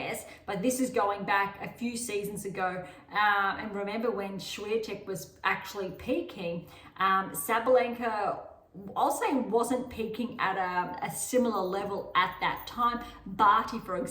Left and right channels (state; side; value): identical; both; correlation 1.00